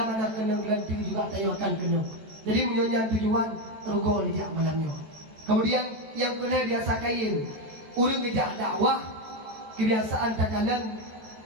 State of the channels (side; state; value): left; late; 13 ms